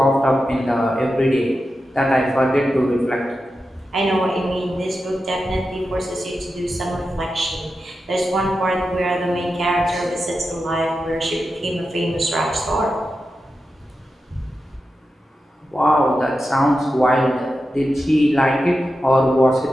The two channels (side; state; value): both; normal; correlation 0.90